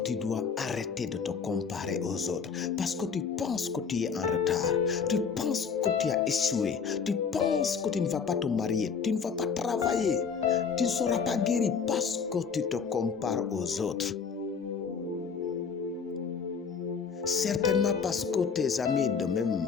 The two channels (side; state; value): right; quieter; 6.0 dB